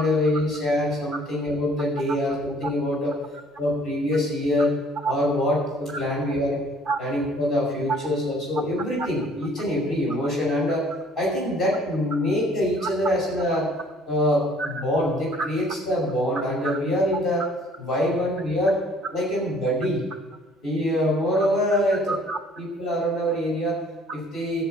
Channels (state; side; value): normal; both; correlation 0.56